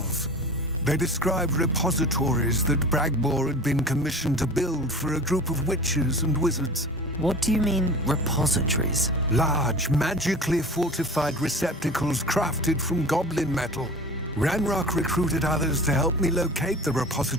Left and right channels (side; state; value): both; normal; correlation 0.38